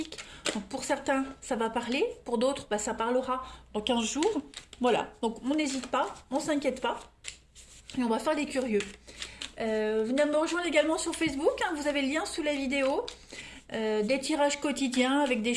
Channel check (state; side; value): identical; both; correlation 1.00